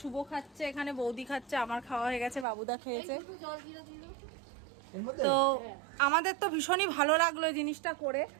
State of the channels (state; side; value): drops out; left; at 2.5 s